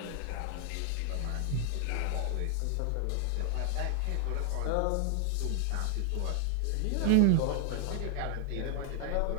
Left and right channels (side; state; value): both; different; correlation 0.00